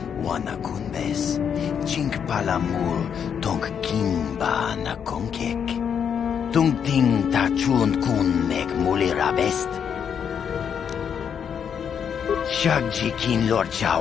Wana kunbes, chink palamul tong kimba na kongkek. Tung ting ta chun kun nek mulira best. Shagji kin lor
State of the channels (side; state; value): right; quieter; 7.7 dB